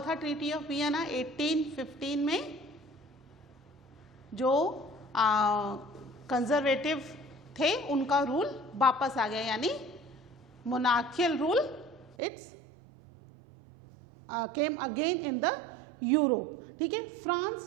ट्रीटी ऑफ वियना 1815 में? जो कंजर्वेटिव थे उनका रूल वापस आ गया, यानी monarchial rule it's came again in the Europe. ठीक है, फ्रांस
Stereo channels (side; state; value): left; drops out; at 12.2 s